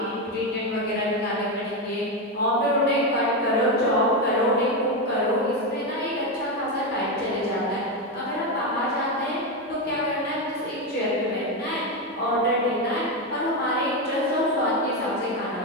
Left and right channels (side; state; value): both; normal; correlation 0.10